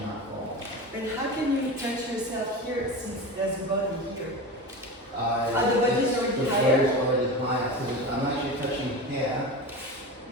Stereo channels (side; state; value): both; normal; correlation 0.27